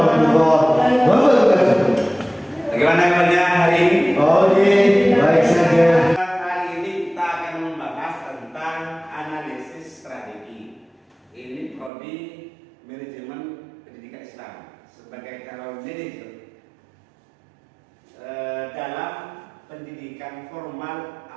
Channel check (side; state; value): left; drops out; at 11.9 s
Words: wabarakatuh. Bagaimana kabarnya hari ini? Oke, baik saja. Hari ini kita akan membahas tentang analisis strategi. Ini prodi manajemen pendidikan Islam sebagai calon manajer dalam pendidikan formal